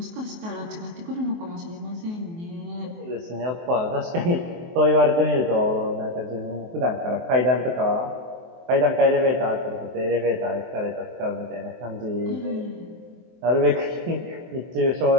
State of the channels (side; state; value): left; late; 23 ms